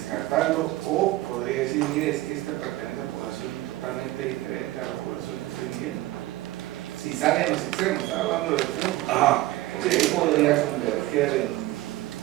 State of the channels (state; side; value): quieter; left; 17.3 dB